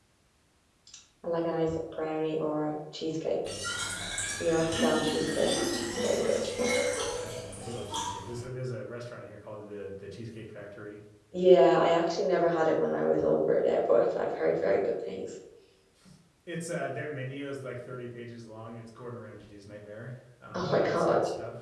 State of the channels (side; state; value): both; identical; correlation 1.00